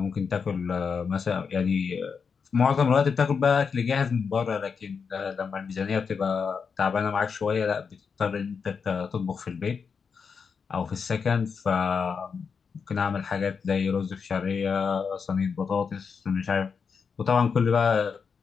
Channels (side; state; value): right; quieter; 5.9 dB